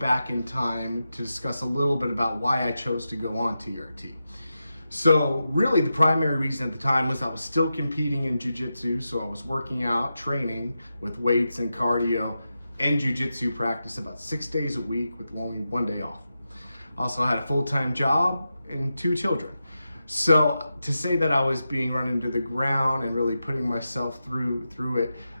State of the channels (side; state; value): both; inverted; correlation -0.90